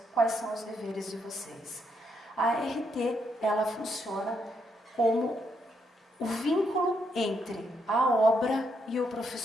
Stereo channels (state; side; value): normal; both; correlation 0.77